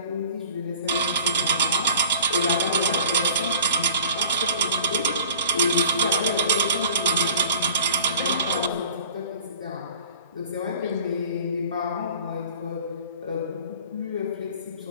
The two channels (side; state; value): both; inverted; correlation -0.45